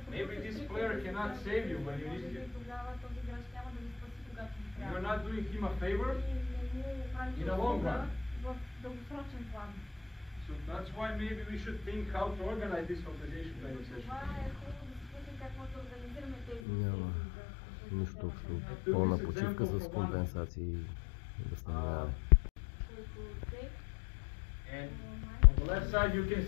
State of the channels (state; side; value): drops out; right; at 16.6 s